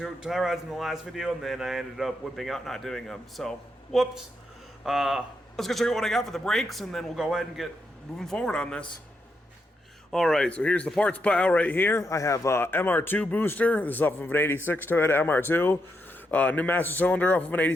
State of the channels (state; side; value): normal; both; correlation 0.82